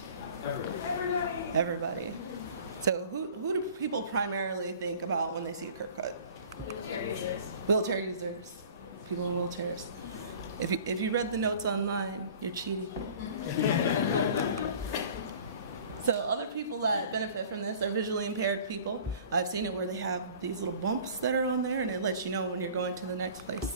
Everybody. Everybody. So, who do people primarily think about when they see a curb cut? Wheelchair users. Wheelchair users. People in wheelchairs. If you read the notes online, you're cheating. So other people that benefit from this are visually impaired people. I've seen it where they have these little bumps that are on there, and it lets you know when you're going to the next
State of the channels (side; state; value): both; inverted; correlation -0.46